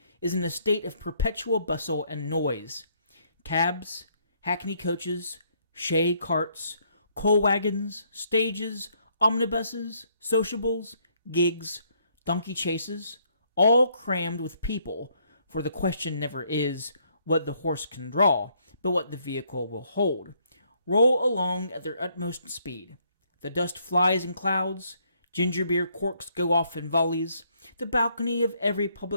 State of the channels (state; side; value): inverted; both; correlation -0.70